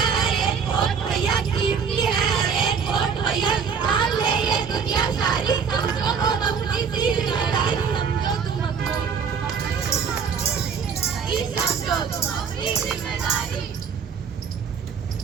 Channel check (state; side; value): quieter; left; 6.4 dB